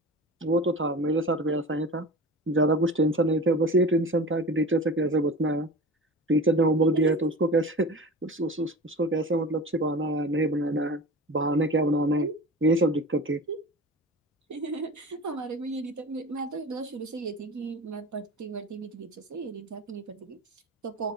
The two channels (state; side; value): normal; both; correlation 0.34